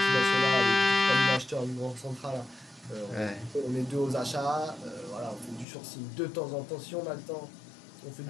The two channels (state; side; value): drops out; right; at 5.7 s